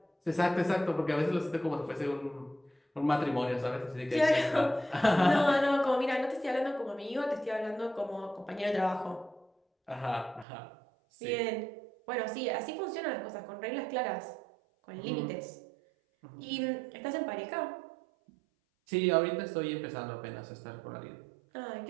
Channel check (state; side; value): drops out; left; at 10.5 s